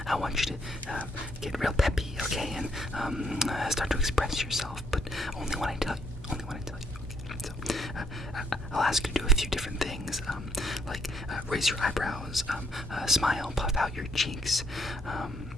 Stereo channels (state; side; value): normal; both; correlation 0.72